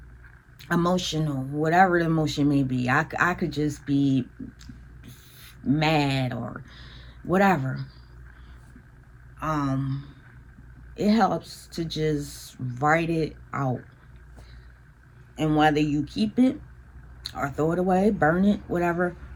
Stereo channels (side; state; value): both; identical; correlation 1.00